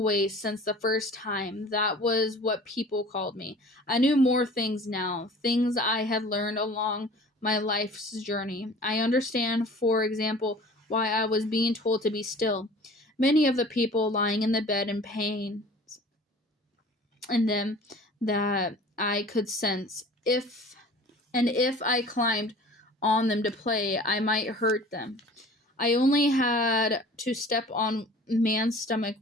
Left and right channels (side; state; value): both; normal; correlation 0.45